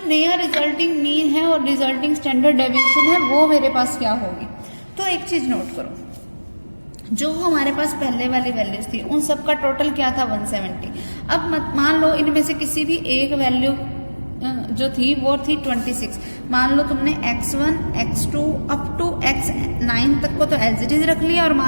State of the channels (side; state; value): both; inverted; correlation -1.00